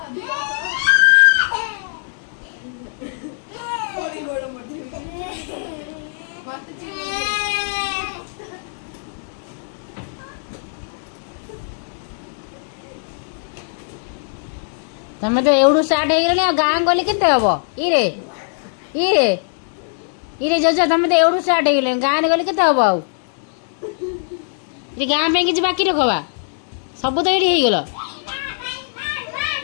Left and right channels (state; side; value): silent; right; digital silence